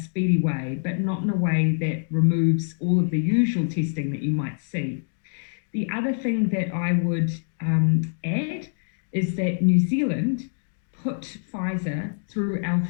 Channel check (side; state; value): right; silent; digital silence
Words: way, but not in a way that removes all of the usual testing that you might see. The other thing that I would add is that New Zealand put Pfizer through our